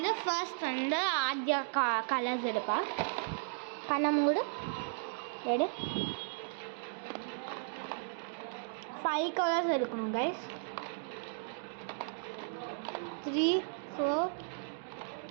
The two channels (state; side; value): silent; left; digital silence